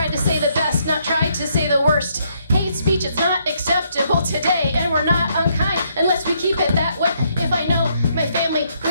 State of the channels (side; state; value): both; inverted; correlation -0.72